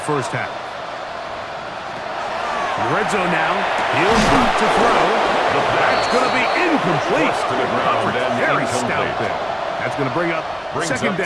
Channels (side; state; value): both; identical; correlation 1.00